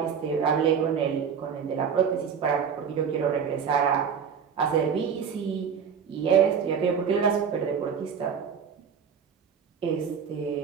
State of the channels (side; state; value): left; quieter; 7.0 dB